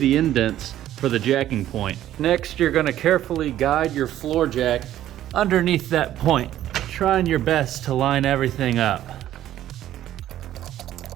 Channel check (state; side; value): quieter; left; 12.6 dB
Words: indents for the jacking point. Next, you're gonna carefully guide your floor jack underneath that point, trying your best to line everything up.